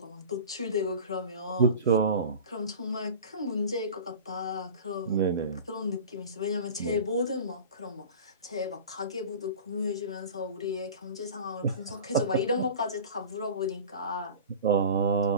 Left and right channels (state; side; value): inverted; both; correlation -0.36